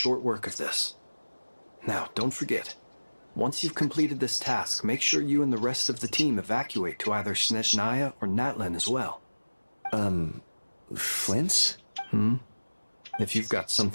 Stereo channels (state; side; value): inverted; both; correlation -1.00